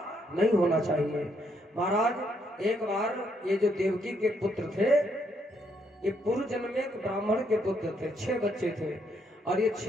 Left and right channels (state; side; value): normal; both; correlation 0.74